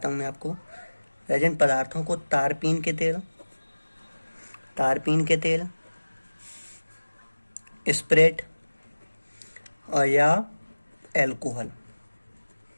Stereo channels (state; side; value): inverted; both; correlation -1.00